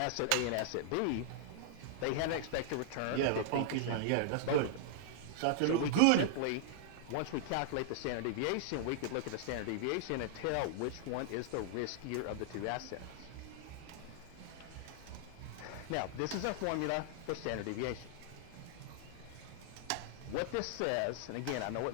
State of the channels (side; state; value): both; different; correlation -0.01